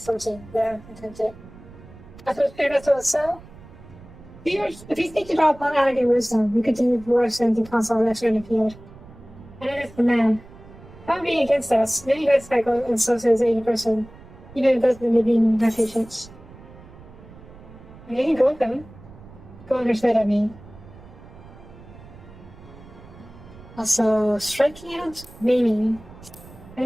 Yeah, intended. I thought it was so. If you think about upon adding wisdom, you continue to work the console that's in the field. And then if the man, not being against us, many guys cycle and so says 80%, even if it doesn't maybe my patience. You can go with them. Go understand, I mean. Also, striking out, maiming.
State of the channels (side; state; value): right; noise; rumble, 20 dB below the sound